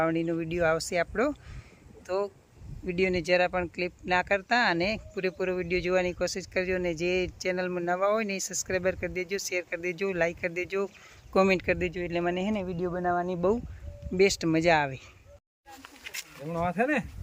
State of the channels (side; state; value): both; identical; correlation 1.00